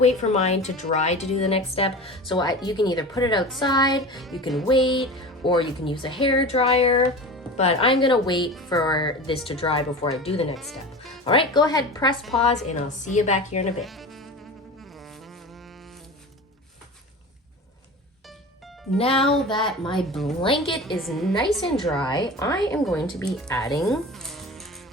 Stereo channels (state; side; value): normal; both; correlation 0.32